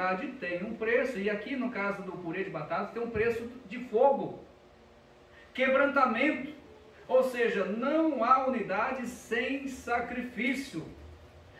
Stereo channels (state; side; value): identical; both; correlation 1.00